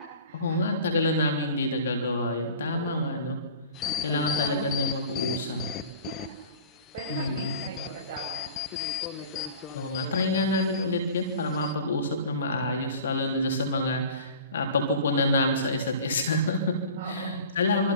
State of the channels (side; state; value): both; inverted; correlation -0.41